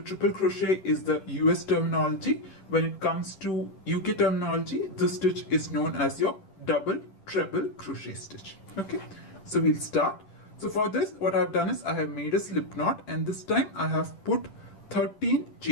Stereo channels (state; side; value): late; right; 10 ms